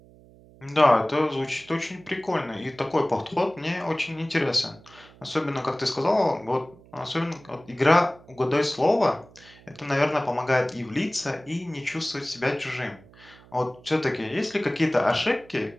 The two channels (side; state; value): right; noise; hum, 24 dB below the sound